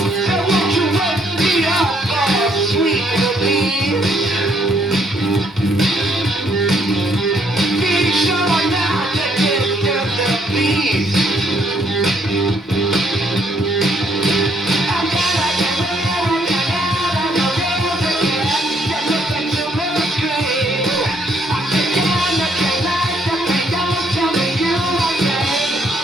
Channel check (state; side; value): normal; both; correlation 0.69